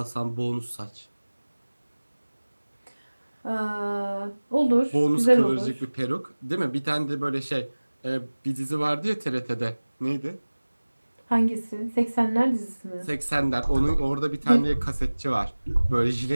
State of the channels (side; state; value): both; inverted; correlation -1.00